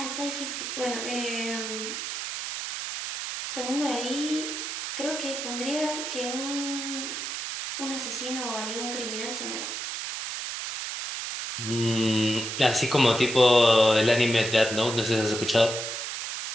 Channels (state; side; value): noise; right; hiss, 5 dB below the sound